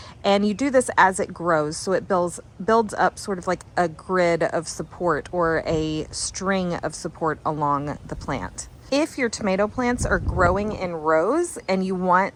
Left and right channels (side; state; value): both; identical; correlation 1.00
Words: And you do this as it grows, so it builds up sort of like a grid of support or a string of support along the plant. If your tomato plants are growing in rows and you